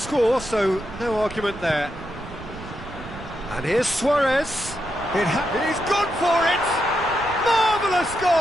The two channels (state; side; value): noise; right; rumble, 14 dB below the sound